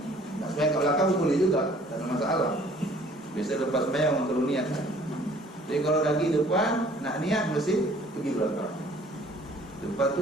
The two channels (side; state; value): both; normal; correlation 0.55